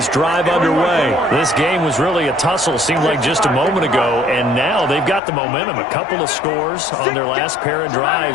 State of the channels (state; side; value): drops out; right; at 5.2 s